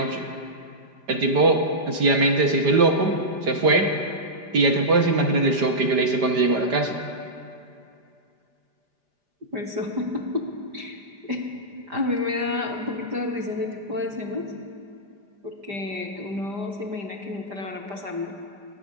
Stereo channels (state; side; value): late; left; 5.0 ms